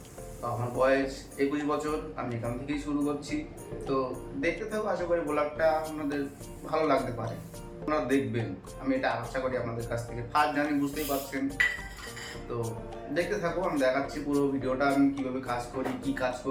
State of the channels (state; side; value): identical; both; correlation 1.00